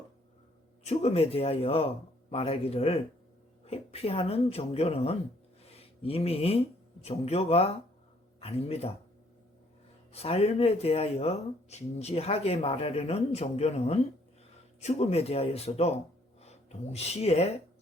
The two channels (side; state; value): both; normal; correlation 0.65